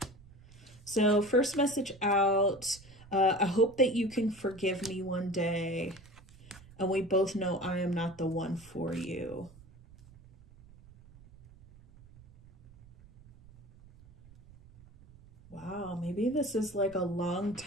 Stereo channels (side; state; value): right; noise; rumble, 22 dB below the sound